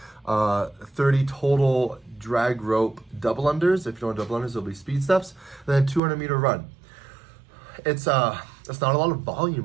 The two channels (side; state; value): left; drops out; at 6.0 s